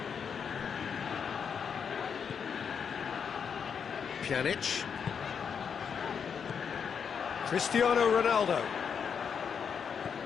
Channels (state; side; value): quieter; right; 6.9 dB